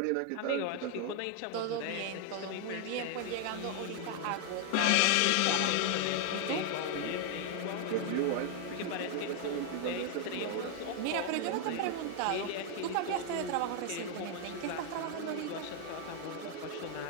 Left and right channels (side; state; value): both; different; correlation 0.01